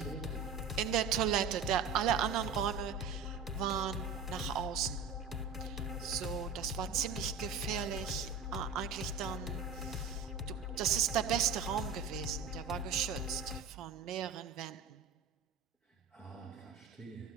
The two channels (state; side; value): quieter; left; 5.4 dB